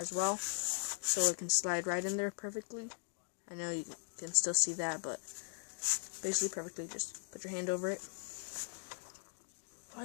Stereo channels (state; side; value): silent; right; digital silence